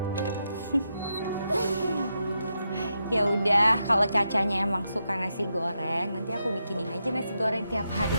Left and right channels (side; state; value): both; inverted; correlation -0.84